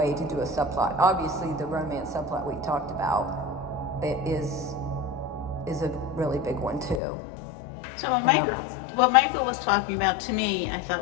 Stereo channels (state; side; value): drops out; right; at 7.0 s